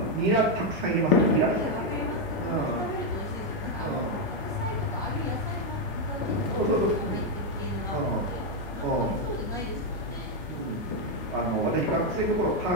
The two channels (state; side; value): normal; both; correlation 0.02